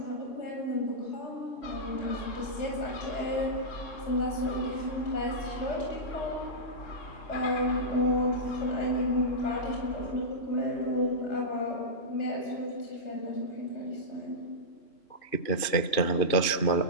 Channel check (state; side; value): late; right; 2.5 ms